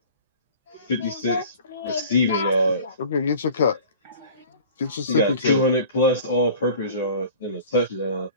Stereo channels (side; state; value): both; inverted; correlation -0.44